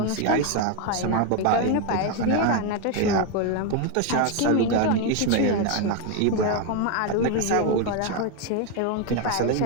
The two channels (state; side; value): different; both; correlation 0.01